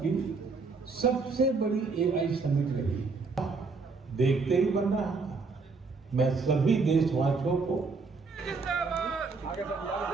की सबसे बड़ी एआई समिट रही। देखते ही बन रहा था। मैं सभी देशवासियों को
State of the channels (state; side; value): quieter; left; 4.3 dB